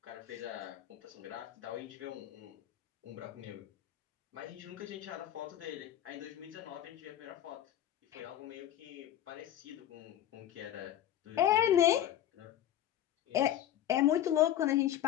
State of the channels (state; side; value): quieter; right; 11.7 dB